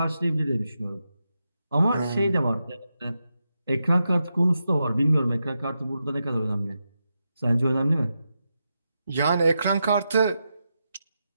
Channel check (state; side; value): inverted; both; correlation -0.87